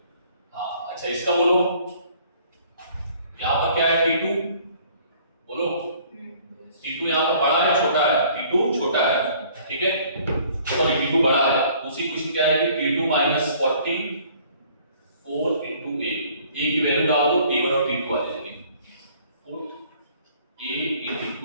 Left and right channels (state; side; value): inverted; both; correlation -0.57